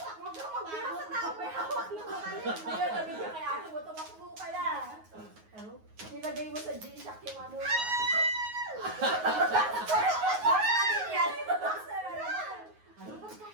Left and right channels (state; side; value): late; left; 9.4 ms